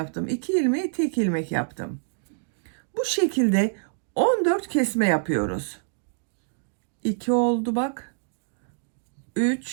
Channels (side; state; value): left; silent; digital silence